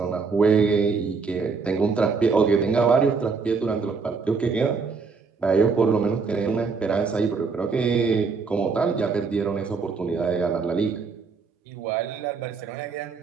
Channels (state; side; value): quieter; left; 4.9 dB